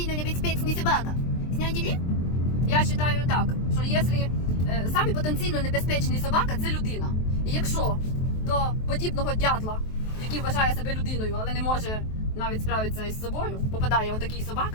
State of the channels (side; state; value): right; late; 23 ms